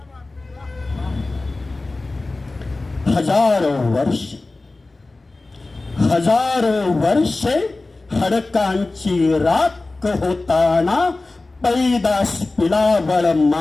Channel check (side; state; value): right; quieter; 3.2 dB